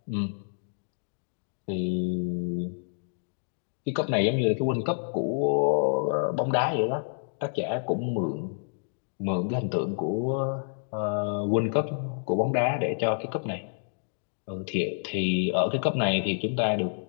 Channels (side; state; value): right; silent; digital silence